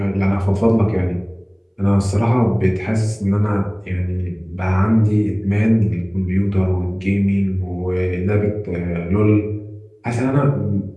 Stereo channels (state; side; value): identical; both; correlation 1.00